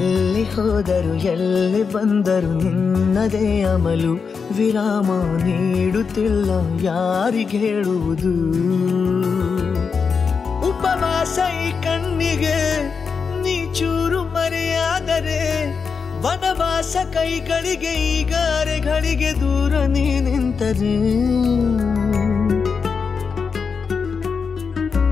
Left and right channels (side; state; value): right; quieter; 5.6 dB